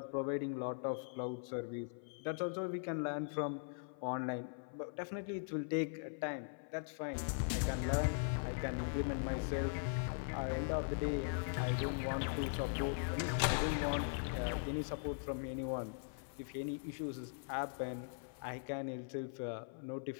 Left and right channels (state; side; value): silent; right; 51 dB below the other